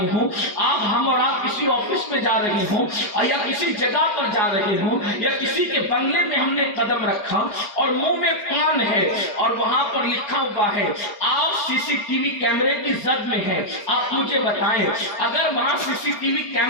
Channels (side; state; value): right; late; 4.9 ms